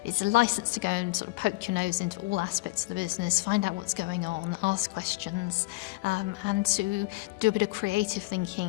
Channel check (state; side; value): quieter; right; 22.5 dB